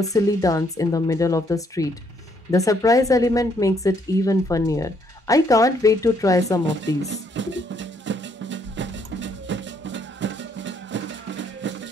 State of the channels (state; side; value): normal; both; correlation 0.70